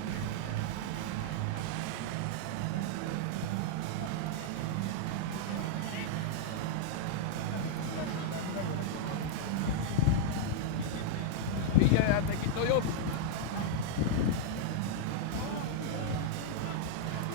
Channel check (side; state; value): both; different; correlation -0.01